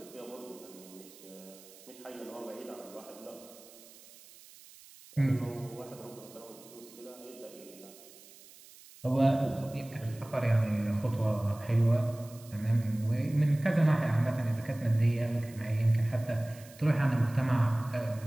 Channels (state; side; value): noise; right; hiss, 21 dB below the sound